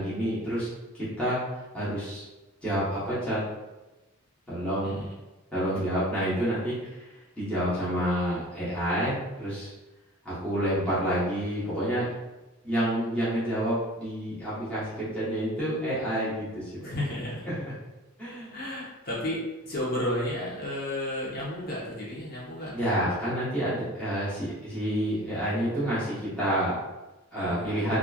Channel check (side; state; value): both; normal; correlation 0.43